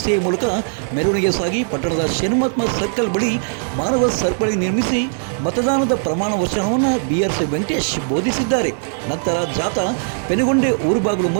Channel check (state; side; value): silent; left; digital silence